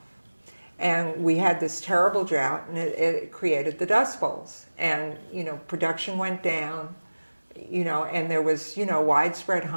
And we had this terrible drought, and it created the Dust Bowls. And, production went down, and there was, widespread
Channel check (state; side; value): inverted; both; correlation -1.00